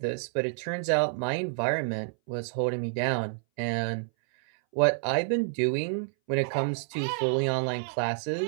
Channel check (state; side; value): silent; left; 59 dB below the other